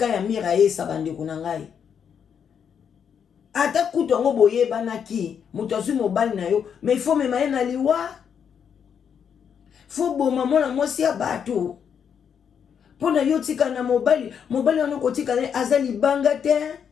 ya mira ye sa bandeko na ngai. Ata kutu ango boye banaki mutu azui mobali na yo mais il faut mema ye na liwa faut boma mwana mwasi ya bato pona yo tika na mobali wana kotika na aza libanga te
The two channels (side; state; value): right; quieter; 7.6 dB